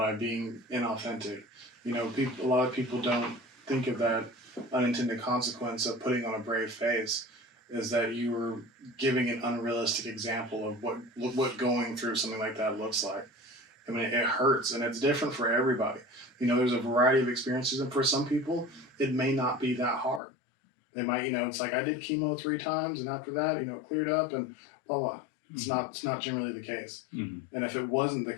being inauthentic. A lot of people don't think of that unintended consequence of putting on a brave face, is that you were giving an unrealistic example of what going through something like that looks like. I mean, it hurts, and it's different for everybody. There's a variety of experiences, and for some people, it may not be that hard. They might, it's like, I did chemo 3 times, and after that, it cleared up, and blah, blah. It's not generally the case. Mm-hmm. And if it wasn't the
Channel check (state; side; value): drops out; right; at 20.2 s